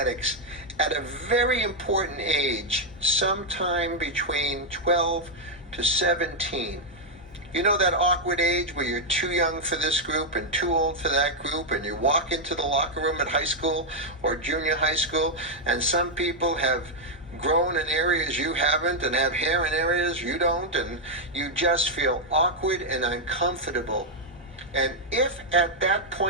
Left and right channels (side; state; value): both; normal; correlation -0.01